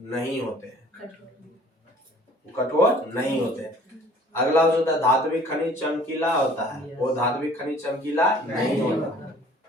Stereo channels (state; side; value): normal; both; correlation 0.52